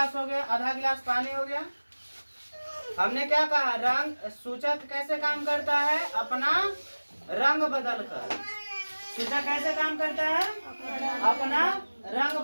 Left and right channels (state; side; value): inverted; both; correlation -1.00